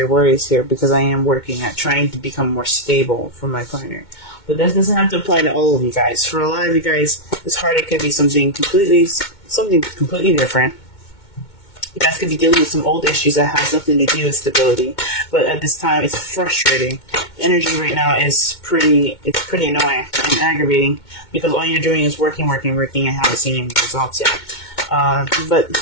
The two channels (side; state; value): right; late; 2.2 ms